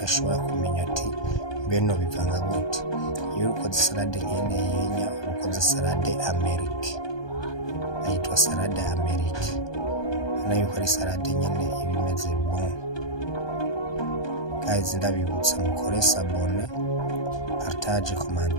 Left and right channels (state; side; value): late; right; 1.2 ms